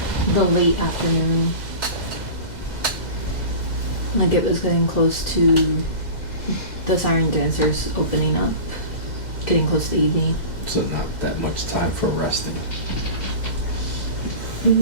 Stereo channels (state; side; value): late; right; 2.0 ms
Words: the late afternoon. Like it was getting close to the siren dancers opening up. Getting close to evening. So not that much time for resting.